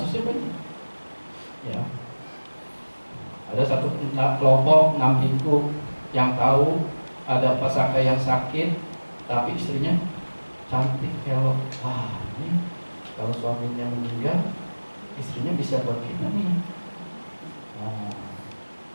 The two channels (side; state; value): both; inverted; correlation -1.00